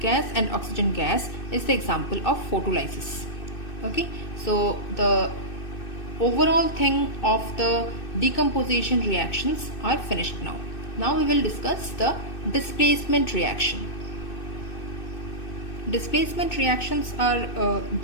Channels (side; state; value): right; late; 2.6 ms